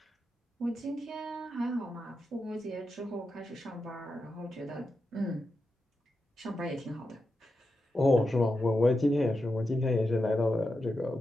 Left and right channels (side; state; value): both; normal; correlation 0.88